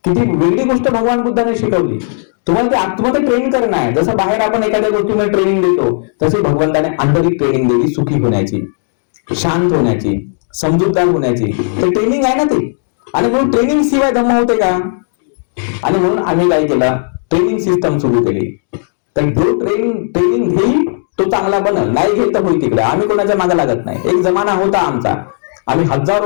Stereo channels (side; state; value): right; silent; digital silence